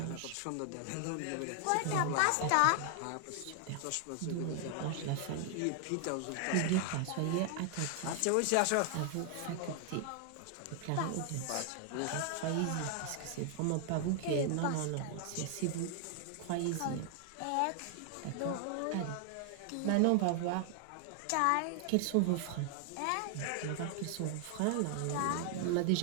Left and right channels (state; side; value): different; both; correlation 0.00